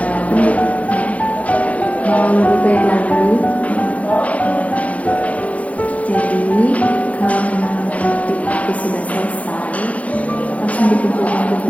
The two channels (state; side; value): late; right; 0.067 ms